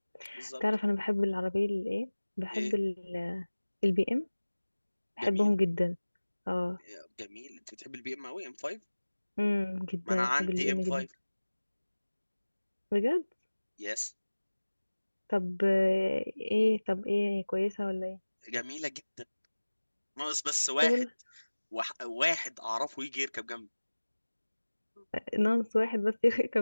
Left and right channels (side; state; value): both; inverted; correlation -1.00